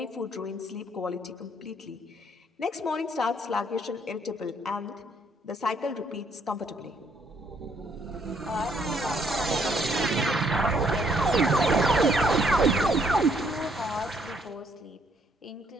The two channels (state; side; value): normal; both; correlation 0.68